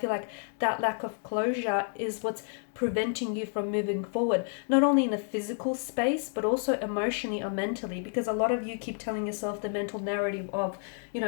like that lack of closure is what's preventing you from moving forward, not only in a physical space, but also emotionally or mentally, because a lot of you keep telling yourself the mental narrative of,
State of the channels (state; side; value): silent; right; 58 dB below the other